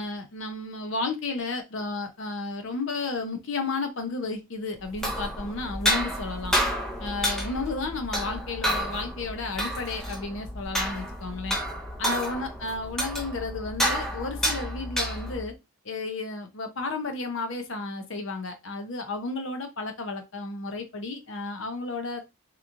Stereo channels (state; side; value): normal; both; correlation 0.25